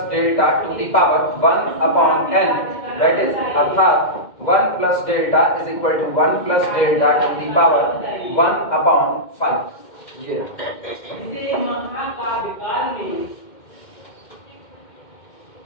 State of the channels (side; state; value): right; late; 2.1 ms